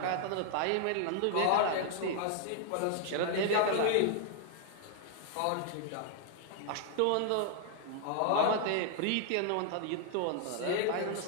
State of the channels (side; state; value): both; different; correlation 0.00